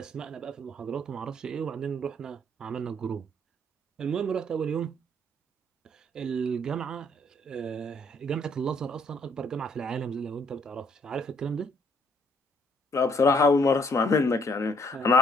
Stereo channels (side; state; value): both; normal; correlation 0.66